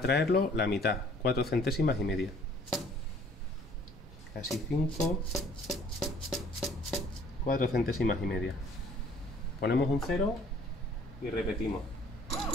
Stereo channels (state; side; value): normal; both; correlation 0.56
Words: traerlo la mitad, 4 centésimas y media. Casi 5, 4 centésimas y media. Ponemos un 0 y repetimos.